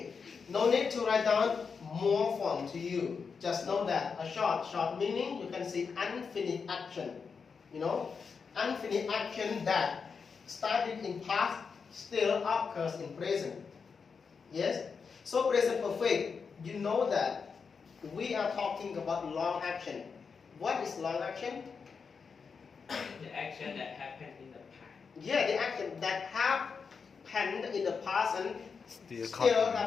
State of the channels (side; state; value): right; quieter; 5.6 dB